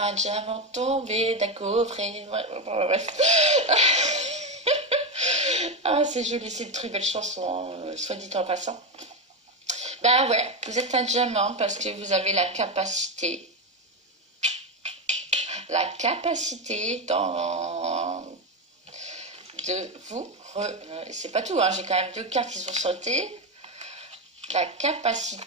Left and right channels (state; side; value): normal; both; correlation 0.12